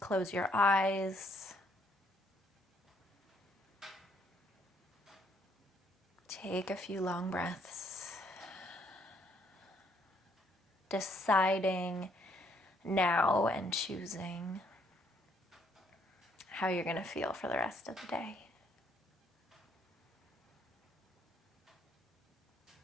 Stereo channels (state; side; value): normal; both; correlation 0.69